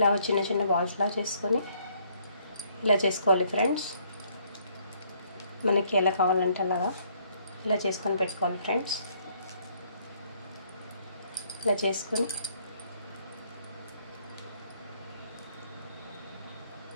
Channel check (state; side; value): inverted; both; correlation -0.66